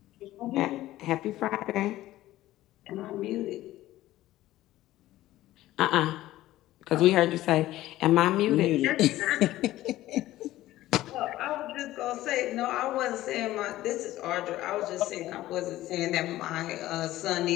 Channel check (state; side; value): quieter; right; 15.4 dB